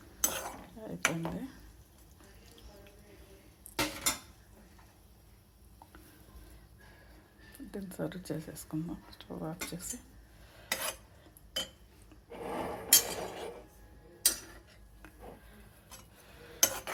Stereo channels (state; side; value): identical; both; correlation 1.00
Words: దీన్ని సర్వ్ చేసేసుకుందాం. స్టవ్ ఆఫ్ చేసి